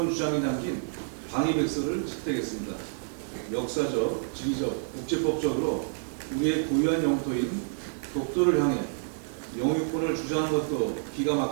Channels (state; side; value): silent; left; digital silence